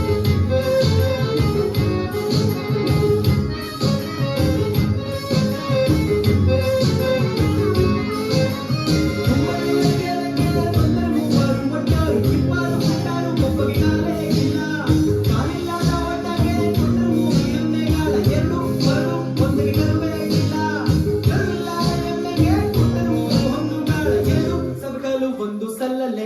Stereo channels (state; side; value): identical; both; correlation 1.00